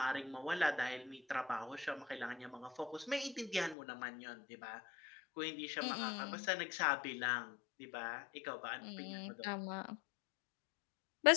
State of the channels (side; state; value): right; drops out; at 3.8 s